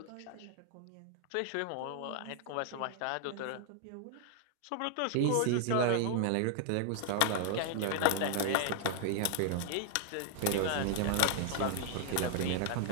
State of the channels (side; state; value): both; different; correlation 0.00